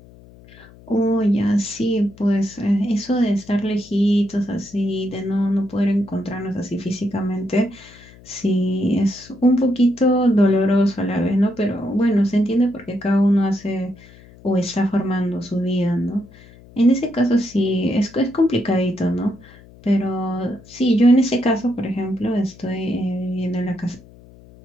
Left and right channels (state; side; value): noise; left; hum, 23 dB below the sound